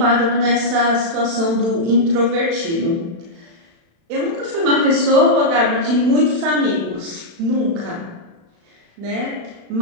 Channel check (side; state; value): left; late; 36 ms